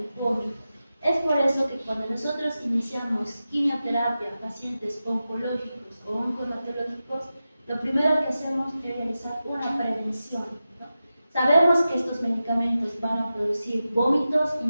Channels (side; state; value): both; inverted; correlation -0.93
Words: vómito. Es por eso que cuando nosotros iniciamos quimioterapia a pacientes oncológicos o oncohematológicos, lo primero que hacemos es realizar una prevención, ¿no? Sabemos que estos medicamentos van a producir vómitos y